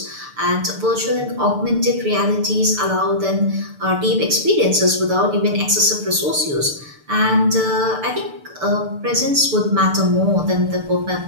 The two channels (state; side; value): late; left; 6.8 ms